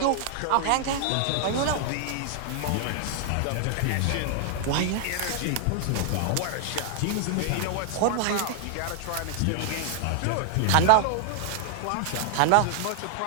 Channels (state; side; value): different; both; correlation 0.00